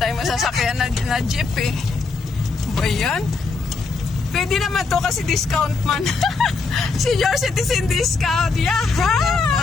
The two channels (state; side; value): quieter; right; 4.3 dB